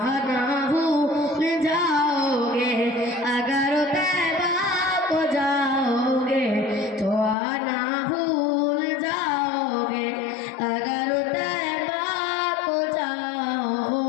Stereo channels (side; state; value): right; drops out; at 7.4 s